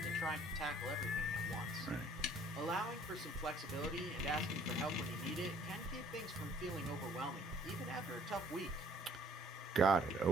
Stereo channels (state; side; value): normal; both; correlation 0.58